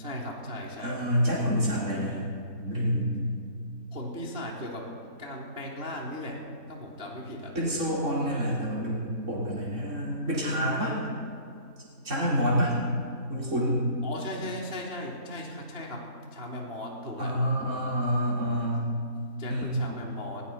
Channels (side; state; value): left; late; 3.6 ms